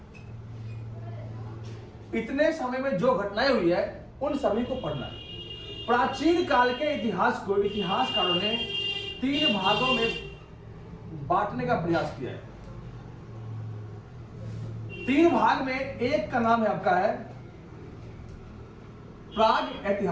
इतने समय में जो घटनाएं हुई है उन सभी को पढ़ना है। प्राचीन काल के इतिहास को इतिहासकारों ने 3 भागों में बांटने का प्रयास किया है। 3 भाग में एक का नाम है आपका है प्राग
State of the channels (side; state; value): both; identical; correlation 1.00